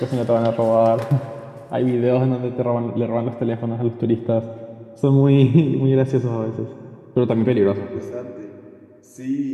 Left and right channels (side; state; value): both; identical; correlation 1.00